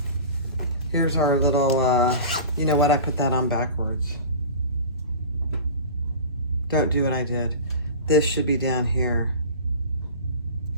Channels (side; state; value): both; inverted; correlation -0.35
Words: Here's our little, you know what? I put that on backwards. Don't do what I did. This should be down here.